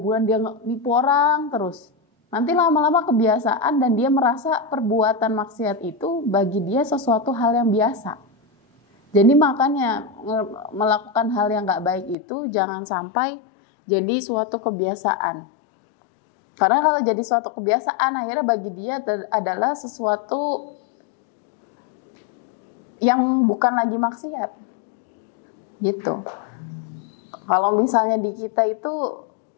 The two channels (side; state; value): right; drops out; at 12.2 s